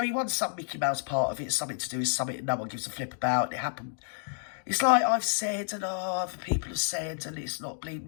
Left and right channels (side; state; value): right; silent; digital silence